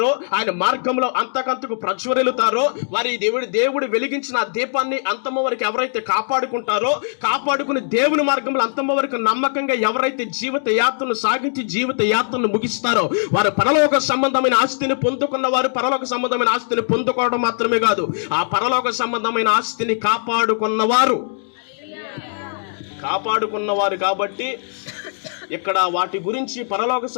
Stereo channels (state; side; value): silent; right; digital silence